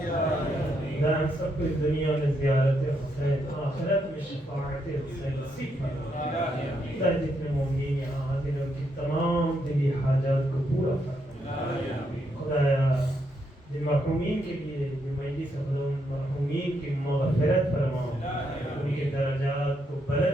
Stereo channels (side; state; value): both; normal; correlation 0.78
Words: ہم سب کو اس دنیا میں زیارت حسین, آخرت میں شفاعت حسین نصیب فرما. جتنے مومنین یہاں حاضر ہیں ان کی تمام دلی حاجات کو پورا فرما. خدایا جن مرحومین کے لیے جو مجلس خدا مرحومین کی مغفرت فرماؤ, ان کے درجات کو